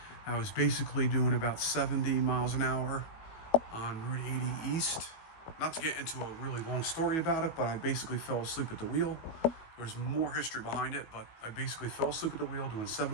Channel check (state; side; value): late; right; 18 ms